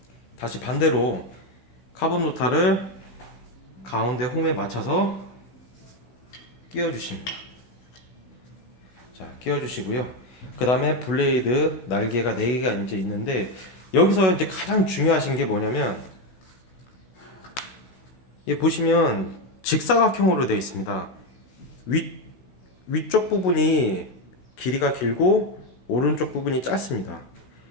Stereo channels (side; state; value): right; late; 16 ms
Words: 다시 반대로 카본 노타를 가운데 홈에 맞춰서 끼워 주십니다. 자, 끼워주시고요. 그 다음에 블레이드 날개가 4개가 이제 있는데, 여기서 이제 가장 중요하신 게 뭐냐면, 이 보시면 직사각형으로 되어 있습니다. 위쪽 부분이 길이가 길고 오른쪽 부분이 짧습니다.